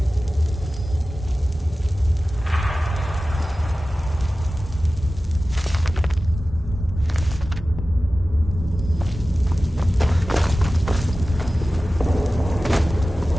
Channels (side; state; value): both; normal; correlation 0.96